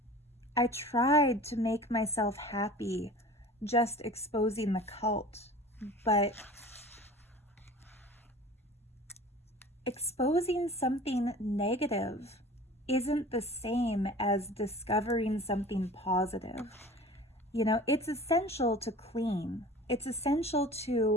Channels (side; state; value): both; normal; correlation 0.41